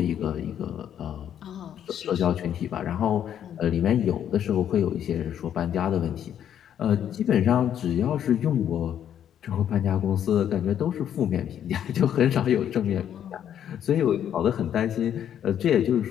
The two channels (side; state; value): right; quieter; 9.8 dB